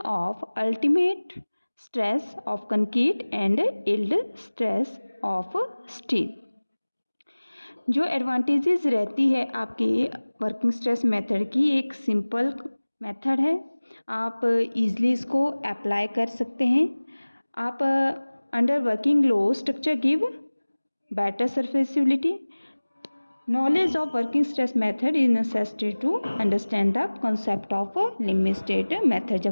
of ultimate stress of concrete and yield stress of steel. जो advantages रहती है आपकी working stress method की, एक simple method है. आप easily इसको apply कर सकते हैं. आप under working low structure give better serviceability. Knowledge of working stress method is necessary to understand the concept of limit state method.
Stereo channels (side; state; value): both; inverted; correlation -1.00